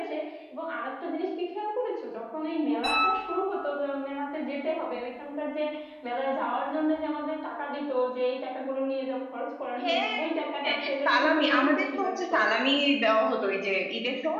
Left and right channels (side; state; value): both; identical; correlation 1.00